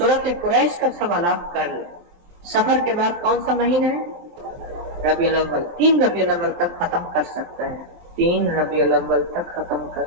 قریش کا سوالات کر لے. سفر کے بعد کون سا مہینہ ہے؟ ربیع الاول. 3 ربیع الاول تک ختم کر سکتا ہے. 3 ربیع الاول تک ختم کر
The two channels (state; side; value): late; left; 23 ms